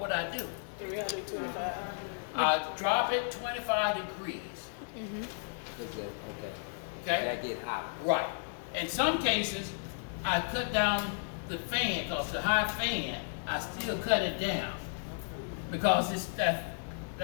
would I do? 325. I drop it 25 degrees. Okay. Okay? That get hot. Right. In some cases, I cut down the fan because the high fan, I still cut it down because it's that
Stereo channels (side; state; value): right; silent; digital silence